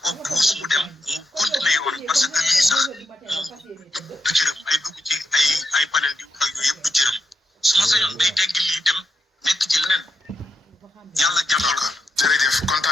ko puus mu dem mu continuer yoon parce que lii sax moom du jërëm ay dugg ci ay panel di wax ak yooyu yëpp du jërëm su ma sañoon day tegg lii dem nekk ci leneen yàlla jàppal ko. jërëjëf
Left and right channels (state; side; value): normal; both; correlation 0.83